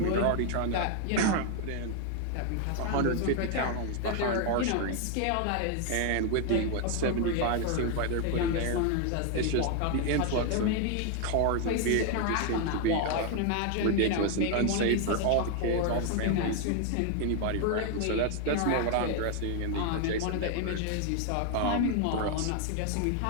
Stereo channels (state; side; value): different; both; correlation 0.00